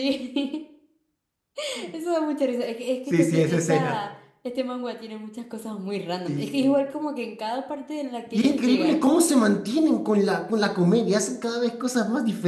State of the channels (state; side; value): identical; both; correlation 1.00